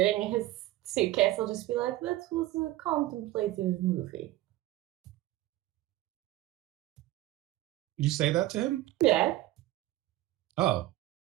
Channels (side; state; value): left; quieter; 16.1 dB